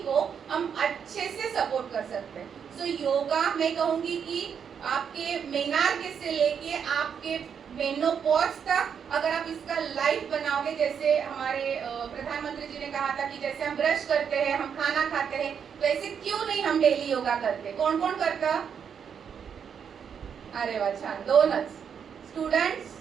को हम अच्छे से सपोर्ट कर सकते हैं। सो योगा मैं कहूंगी कि आपके मेनार्क से लेके आपके मेनोपॉज तक अगर आप इसका लाइफ बनाओगे, जैसे हमारे प्रधानमंत्री जी ने कहा था कि जैसे हम ब्रश करते हैं, हम खाना खाते हैं, तो ऐसे क्यों नहीं हम डेली योगा करते। कौन कौन करता? अरे वाह, छान, दोनच स्टुडंट्स,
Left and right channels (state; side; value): quieter; left; 7.4 dB